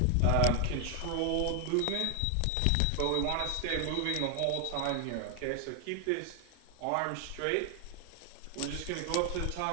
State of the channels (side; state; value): both; different; correlation 0.00